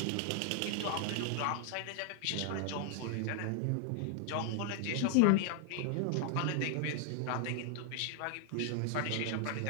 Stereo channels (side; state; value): both; different; correlation 0.00